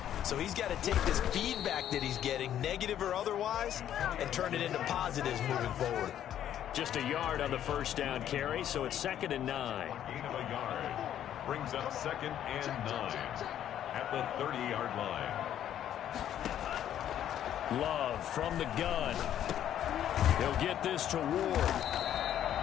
So he's got to take this feedback that he's getting, negative or otherwise, and turn it into positives moving forward. Just a yard on the 1st down carry, so it's 2nd and 9. Gain of a yard. Brings up 2nd and 9 at the 30-yard line. Love from the gun. He'll get this to Ward.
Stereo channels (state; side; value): quieter; right; 10.7 dB